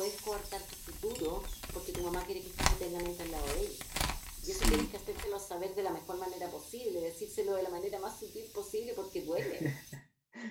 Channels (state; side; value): identical; both; correlation 1.00